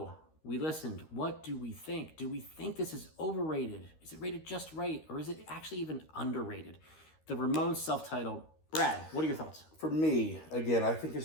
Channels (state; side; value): late; right; 13 ms